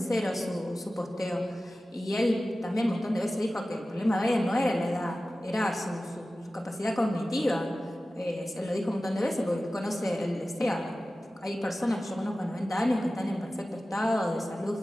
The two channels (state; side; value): normal; both; correlation 0.95